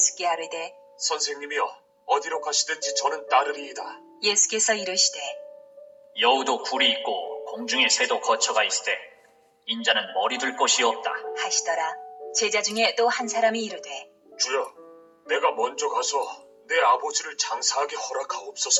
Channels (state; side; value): identical; both; correlation 1.00